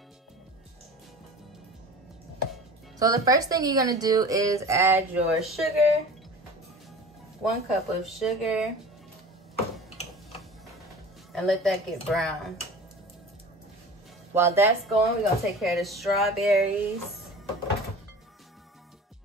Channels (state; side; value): normal; both; correlation 0.38